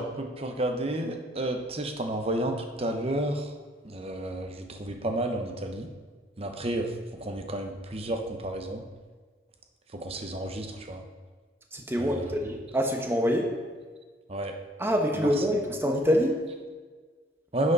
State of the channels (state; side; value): normal; both; correlation 0.61